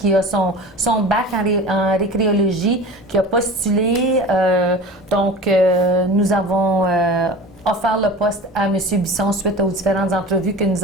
a son bac en récréologie, qui a postulé. Donc, nous avons offert le poste à M. Bisson suite aux différentes entrevues que nous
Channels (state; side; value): normal; both; correlation 0.37